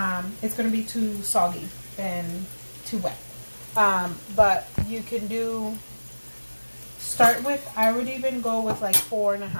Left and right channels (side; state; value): both; inverted; correlation -1.00